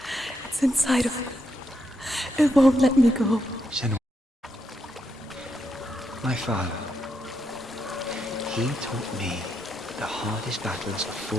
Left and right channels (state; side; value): normal; both; correlation 0.81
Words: It's inside of me. It won't let me go. Senua. My father. He taught me the hardest battles are